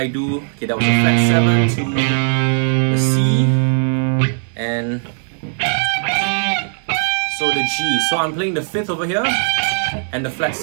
do? Okay, that was a flat 7 to the C and so the G. So I'm playing the 5th over here and the flat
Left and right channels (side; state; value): left; silent; digital silence